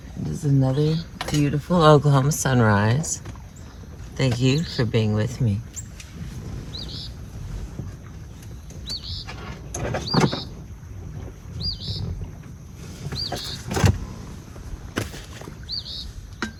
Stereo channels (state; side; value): identical; both; correlation 1.00